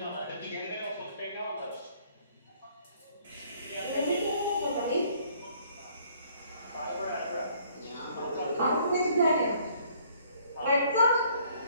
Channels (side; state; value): both; inverted; correlation -0.61